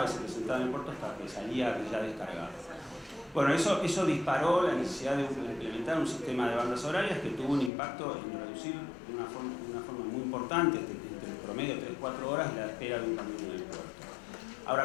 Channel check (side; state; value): right; drops out; at 7.7 s